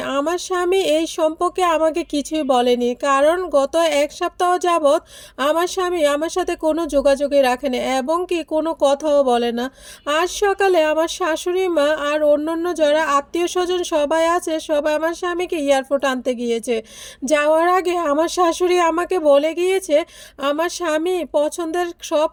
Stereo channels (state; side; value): identical; both; correlation 1.00